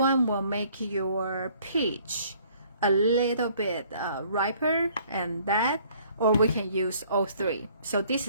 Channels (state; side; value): inverted; both; correlation -0.59